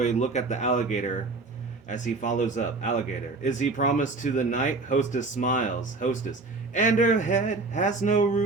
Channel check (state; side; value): quieter; left; 3.6 dB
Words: look at the alligator as he follows up. Alligator. Is he promised to the night? Hostess smiles. Hostess. And her head has no